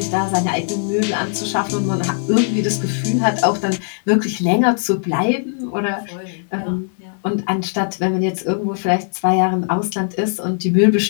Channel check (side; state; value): right; silent; digital silence